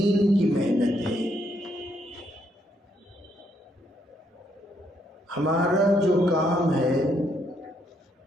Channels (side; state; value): both; normal; correlation 0.74